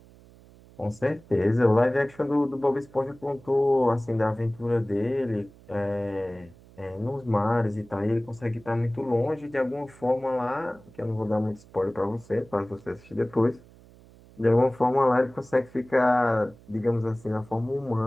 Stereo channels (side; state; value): right; noise; hum, 24 dB below the sound